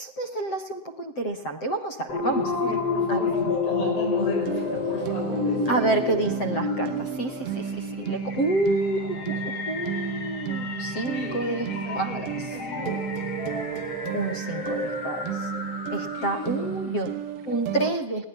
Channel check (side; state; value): right; late; 7.7 ms